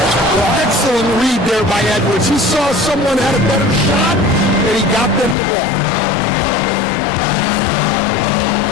Well, excellent read there by Edwards. He saw someone had a better shot, and he got them the ball.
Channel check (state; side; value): drops out; right; at 5.4 s